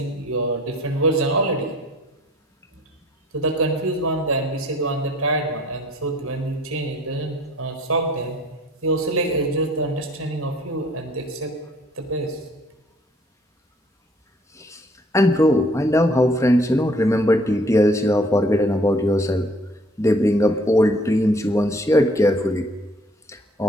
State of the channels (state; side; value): normal; both; correlation 0.57